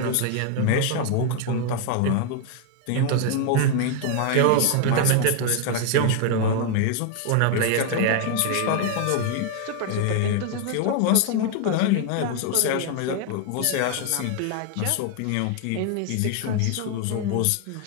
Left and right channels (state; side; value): different; both; correlation 0.00